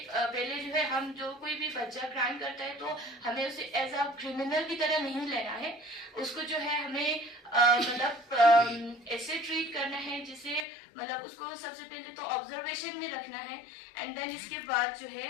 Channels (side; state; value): right; drops out; at 10.7 s